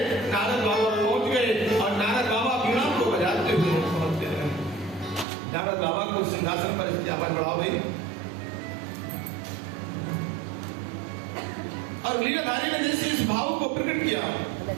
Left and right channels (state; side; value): drops out; left; at 5.2 s